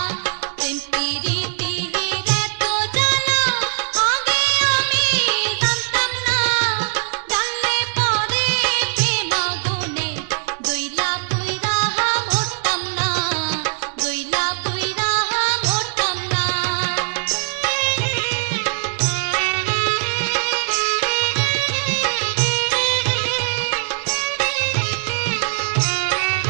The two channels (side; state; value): left; silent; digital silence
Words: প্রীতির এত জ্বালা আগে আমি জানতাম না জানলে পরে প্রেম আগুনে জইলা পুইরা মরতাম না জইলা পুইরা মরতাম না